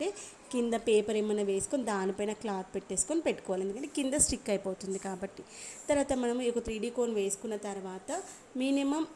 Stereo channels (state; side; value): identical; both; correlation 1.00